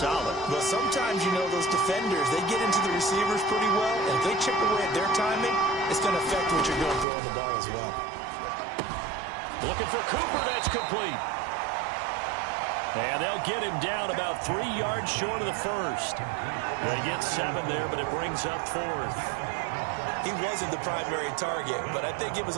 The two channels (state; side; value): drops out; left; at 7.1 s